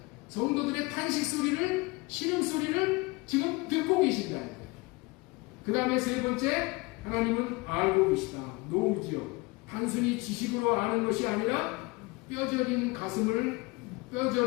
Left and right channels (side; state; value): right; quieter; 24.9 dB